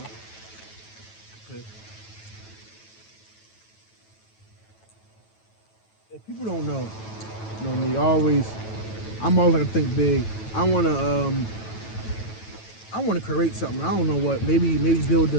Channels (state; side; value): late; right; 9.2 ms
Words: Okay. If people don't know, you know me, I'm always gonna think big. I wanna create something. I don't know what. Maybe